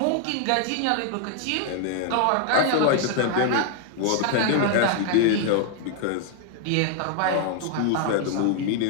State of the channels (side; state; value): both; different; correlation 0.00